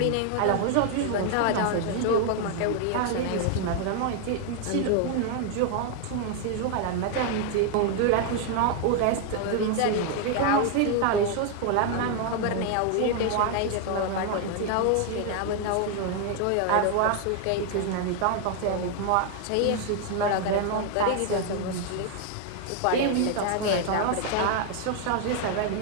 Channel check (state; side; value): different; both; correlation 0.00